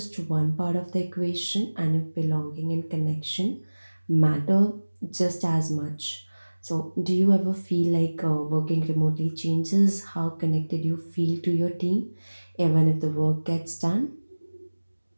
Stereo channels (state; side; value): inverted; both; correlation -1.00